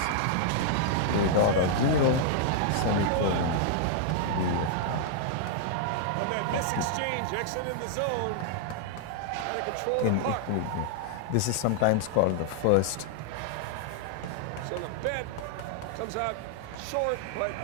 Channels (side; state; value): both; different; correlation -0.01